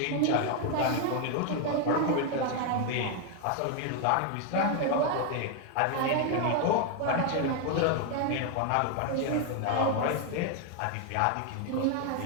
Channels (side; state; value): both; different; correlation 0.01